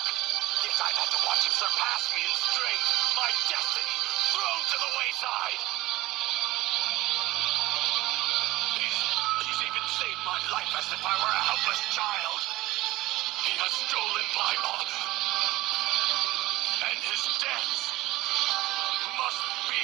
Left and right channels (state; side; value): quieter; left; 18.0 dB